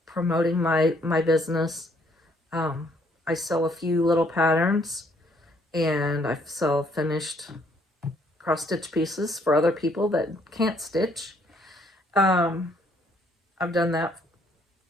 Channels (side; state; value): both; normal; correlation 0.66